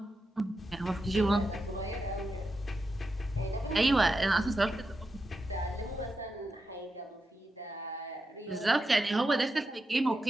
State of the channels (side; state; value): both; normal; correlation 0.88